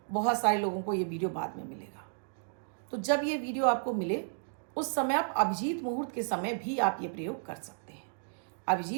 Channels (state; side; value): silent; left; digital silence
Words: बहुत सारे लोगों को ये वीडियो बाद में मिलेगा। तो जब ये वीडियो आपको मिले उस समय आप अभिजीत मुहूर्त के समय भी आप ये प्रयोग कर सकते हैं।